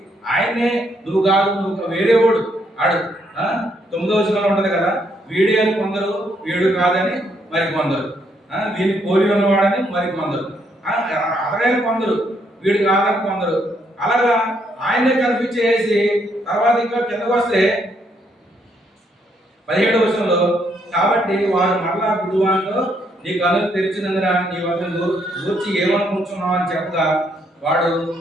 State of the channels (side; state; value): both; normal; correlation 0.73